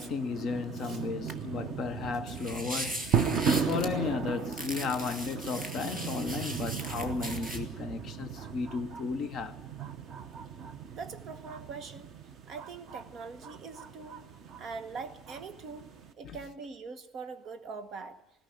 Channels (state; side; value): normal; both; correlation 0.50